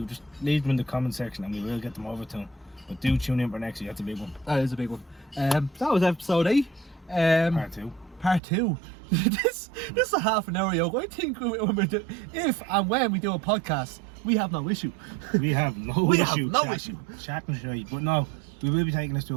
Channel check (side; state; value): left; drops out; at 8.4 s